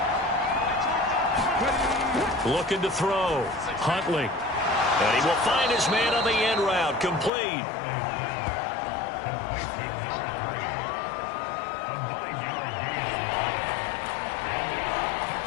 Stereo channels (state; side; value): drops out; right; at 7.3 s